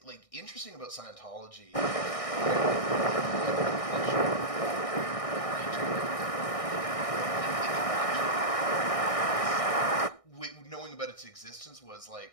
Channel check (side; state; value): right; late; 1.6 ms